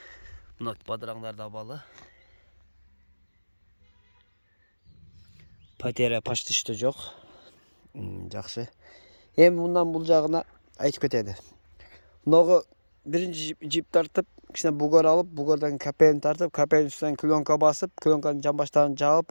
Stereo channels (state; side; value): inverted; both; correlation -1.00